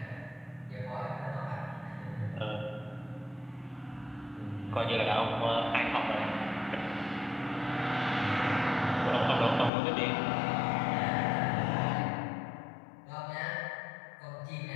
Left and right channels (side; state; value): right; drops out; at 9.7 s